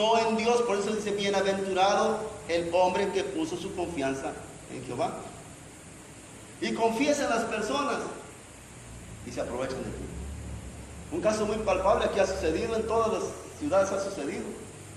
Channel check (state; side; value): identical; both; correlation 1.00